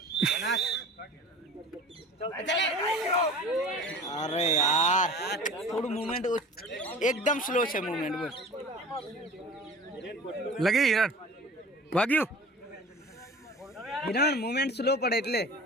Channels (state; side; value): normal; both; correlation 0.40